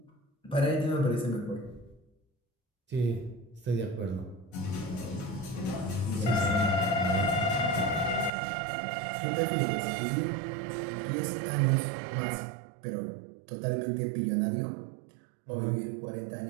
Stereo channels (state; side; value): drops out; left; at 8.3 s